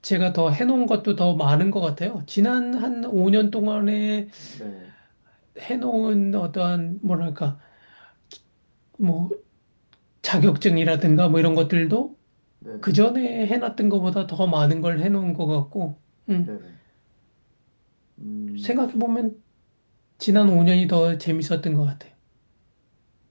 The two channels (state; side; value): inverted; both; correlation -1.00